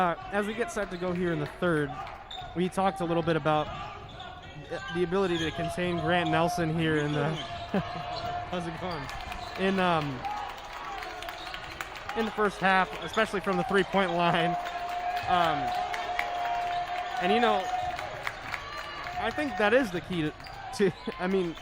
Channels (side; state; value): both; identical; correlation 1.00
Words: we get set to go here in the third, we talked a little bit about the ability to contain Grant Nelson here in the how's it going? In the first half, especially from the three-point line. And you know, I think that is the key to I mean,